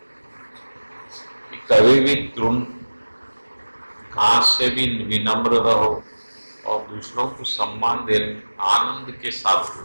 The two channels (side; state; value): both; inverted; correlation -1.00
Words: कि कभी भी तृण घास से भी विनम्र रहो, और दूसरों को सम्मान देने आनंद के साथ